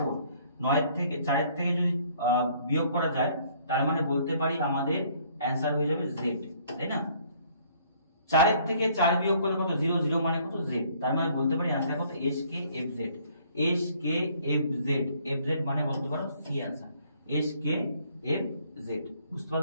9 থেকে 4 থেকে যদি বিয়োগ করা যায় তার মানে বলতে পারি আমাদের অ্যানসার হয়ে যাবে z, তাই না? 4 থেকে 4 বিয়োগ করলে কত 0 0 মানে কত z, তার মানে বলতে পারি অ্যানসার কত s k f z, s k f z, f z মানে বলতে পারো c answer s k f z। বুঝতে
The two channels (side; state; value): both; inverted; correlation -0.61